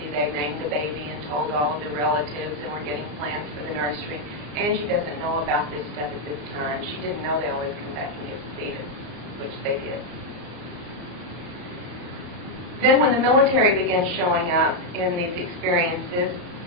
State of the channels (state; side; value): late; left; 34 ms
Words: they named the baby and told all of the relatives, and were getting plans for the nursery. Angie doesn't know about this stuff at this time. She didn't know they always come back and get the fetus, which they did. Then when the military began showing up in these experiences,